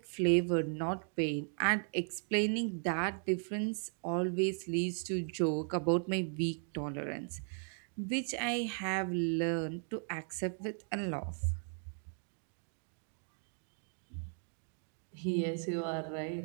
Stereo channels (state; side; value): silent; left; 53 dB below the other